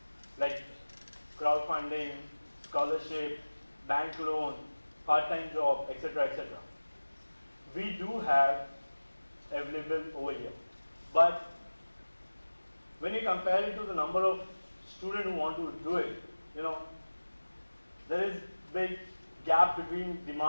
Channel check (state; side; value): inverted; both; correlation -1.00